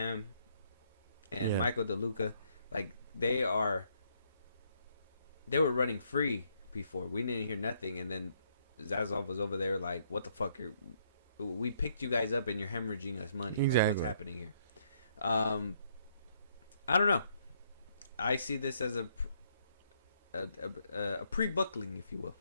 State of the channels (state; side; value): inverted; both; correlation -0.71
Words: and Michael DeLuca, like they were running free before. We didn't hear nothing, and then Zaslav was over there like, what the fuck, we picked you guys up and you're hemorrhaging us money. Exactly. Like, what's happening here? I don't know. I see this as a pre-buckling, if you will,